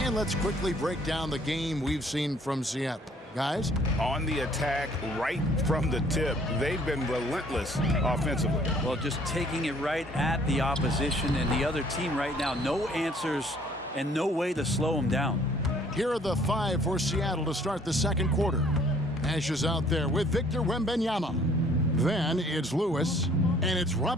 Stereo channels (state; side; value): normal; both; correlation 0.59